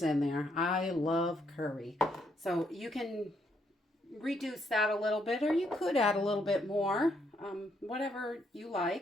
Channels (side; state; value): both; normal; correlation 0.74